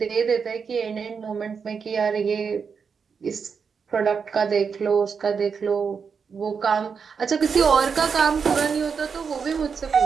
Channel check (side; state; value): left; quieter; 6.0 dB